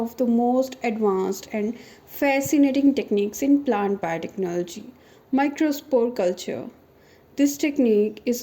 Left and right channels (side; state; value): both; identical; correlation 1.00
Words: the most advanced and fascinating techniques in plant biotechnology, microspore culture. This technique is